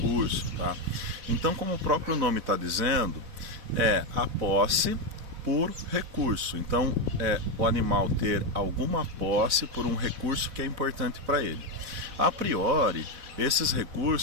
tá? Então, como o próprio nome está dizendo, é a posse por recurso. Então, o animal ter alguma posse por um recurso que é importante para ele. A priori, esses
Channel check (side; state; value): left; late; 4.0 ms